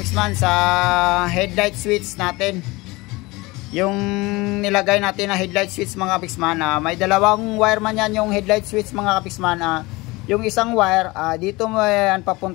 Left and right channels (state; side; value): quieter; right; 22.4 dB